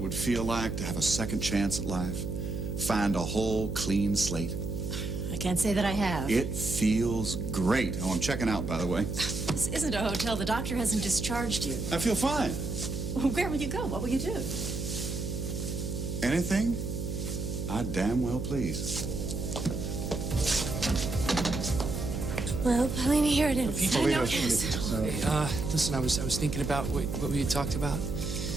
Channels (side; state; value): right; noise; hum, 4 dB below the sound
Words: would feel like to have a second chance at life? Find a whole clean slate? I can't say that I have. It feels great. Oh, I'm checking out, by the way. This isn't a hotel. The doctor hasn't discharged you. I feel fine. Well, where will you go? What will you do? Anything? I damn well please. Well, Paulina, here it is. Hey, listen, I was thinking about what we had talked about.